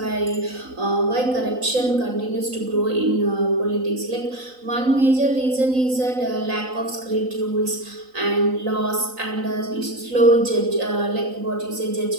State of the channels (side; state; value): left; late; 3.9 ms